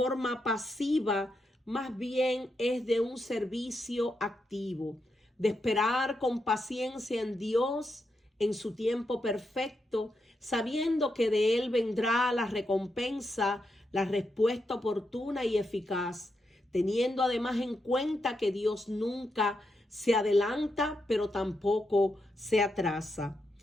pasiva, más bien es de un servicio activo, de esperar con paciencia en Dios en su tiempo perfecto, sabiendo que de Él vendrá la recompensa, la respuesta oportuna y eficaz, teniendo además en cuenta que Dios nunca se adelanta, pero tampoco se atrasa.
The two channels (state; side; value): normal; both; correlation 0.84